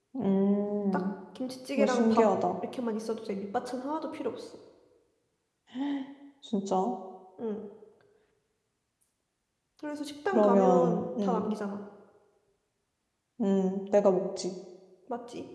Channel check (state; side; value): identical; both; correlation 1.00